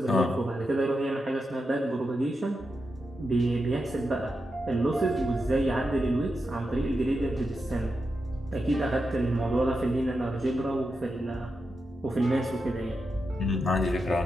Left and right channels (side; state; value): both; normal; correlation 0.88